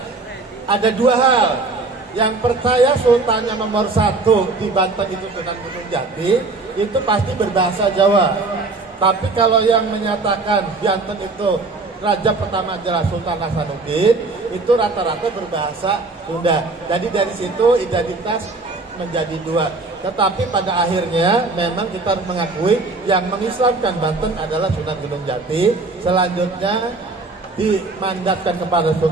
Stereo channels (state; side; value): quieter; left; 3.5 dB